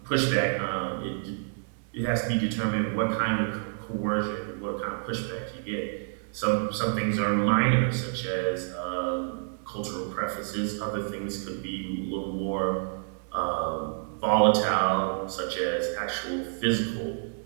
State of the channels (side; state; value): left; silent; 59 dB below the other